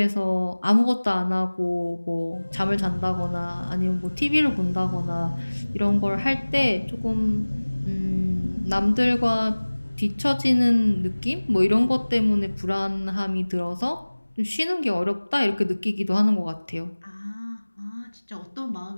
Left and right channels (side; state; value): both; inverted; correlation -1.00